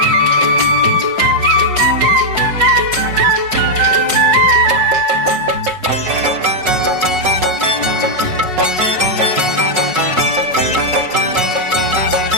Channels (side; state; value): left; late; 5.4 ms